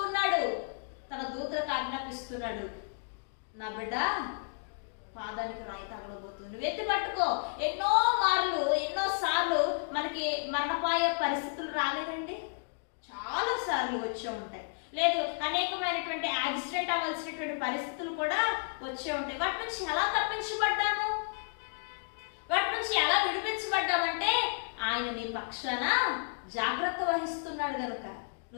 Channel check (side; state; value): right; silent; digital silence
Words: ఉన్నాడు, తన దూతలకు ఆజ్ఞాపిస్తున్నాడు, నా బిడ్డ పాదానికి రాయి తగలబోతుంది, నువ్వు ఎత్తి పట్టుకో. ఎన్నోసార్లు మనకి మరణపాయ పరిస్థితులు రాలేదండి, చాలా సార్లు వచ్చే ఉంటాయి. లేదు, అనేకమైనటువంటి యాక్సిడెంట్ అవ్వాల్సినటువంటి పరిస్థితులు కూడా వచ్చే ఉంటాయి. వాటి నుంచి ఎలా తప్పించబడ్డాము, వాటి నుంచి ఎలా విడిపించబడ్డామంటే ఆయన నీ పక్షాన జాగ్రత్త వహిస్తున్నాడు కనుక